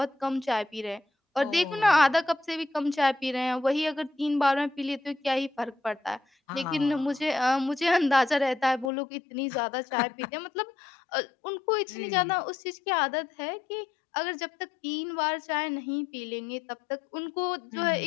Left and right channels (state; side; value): drops out; right; at 8.9 s